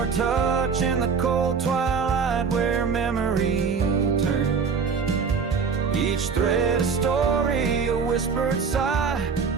touch in the cold twilight where memory turns. Each thread a story, a whispered sigh,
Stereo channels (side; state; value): left; quieter; 5.7 dB